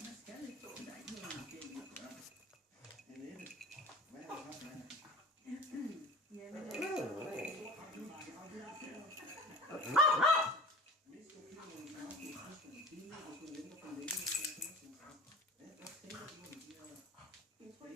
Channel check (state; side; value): normal; both; correlation 0.40